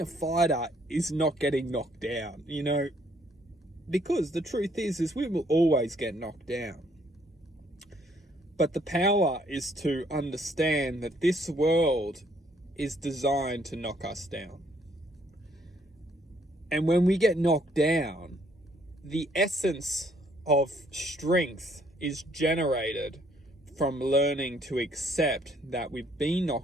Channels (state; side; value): normal; both; correlation 0.66